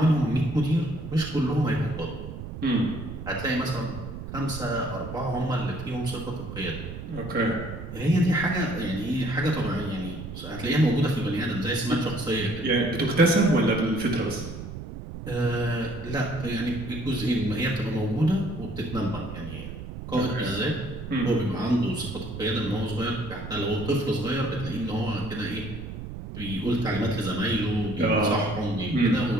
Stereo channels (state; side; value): noise; right; rumble, 9 dB below the sound